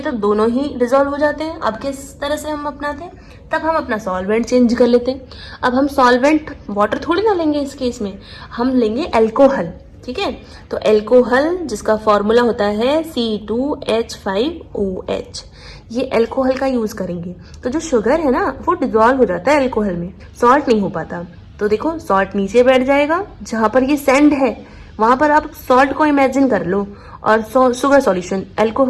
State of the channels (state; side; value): identical; both; correlation 1.00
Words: तो दोनों ही डिजोल्व हो जाते हैं। अब किस तरह से हम अपनाते हैं, तब हम अपना सॉल्वेंट चेंज कर लेते हैं। अब हम सॉल्वेंट वाटर थोड़ी ना लेंगे, इस केस में हम लेंगे एल्कोहल, ठीक है। तो एल्कोहल जिसका फॉर्मूला होता है C2H5OH, ये एल्कोहल का यूज करेंगे। तो जो शुगर है ना वो डिजोल्व हो जाता है एल्कोहल में, सॉल्ट नहीं हो पाता। तो देखो सॉल्ट नीचे बैठ जाएगा, जहां पर ये सैंड है वहां पर आप सॉल्ट को इमेजिन कर लो, और शुगर सॉल्यूशन